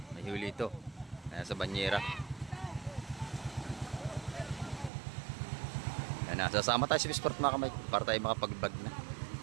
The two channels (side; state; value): left; drops out; at 4.9 s